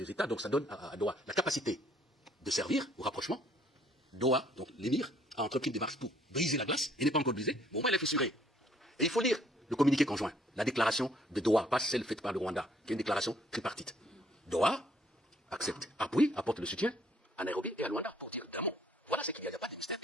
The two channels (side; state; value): both; normal; correlation 0.63